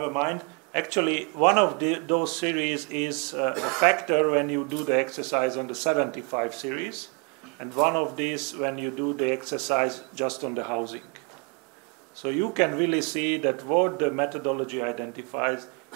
mind. Actually, one of those series is a factor when you do the exercise on the 75 series, and one of these when you do the exercise just on the housing. So you can really see that what the methodology identifies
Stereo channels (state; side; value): quieter; left; 35.4 dB